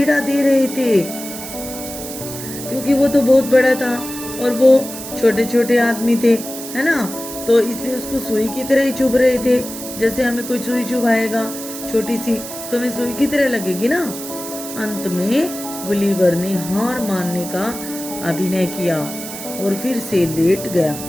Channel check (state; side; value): noise; right; hiss, 10 dB below the sound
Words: दे रहे थे, क्योंकि वो तो बहुत बड़ा था और वो छोटे छोटे आदमी थे, है ना। तो इसलिए उसको सुई की तरह ही चुभ रहे थे। जैसे हमें कोई सुई चुभाएगा छोटी सी, तो हमें सुई की तरह लगेगी ना। अंत में गुलिवर ने हार मानने का अभिनय किया और फिर से लेट गया।